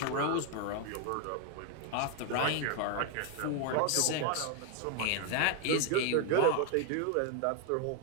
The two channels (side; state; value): both; different; correlation 0.01